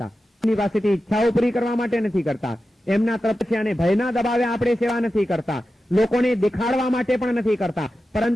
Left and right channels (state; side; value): normal; both; correlation 0.92